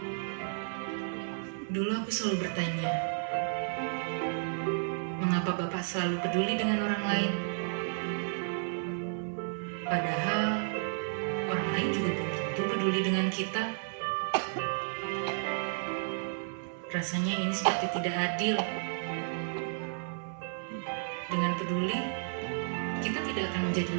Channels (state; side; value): silent; left; 56 dB below the other